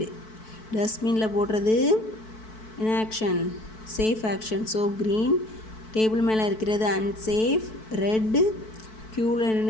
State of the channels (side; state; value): right; late; 4.6 ms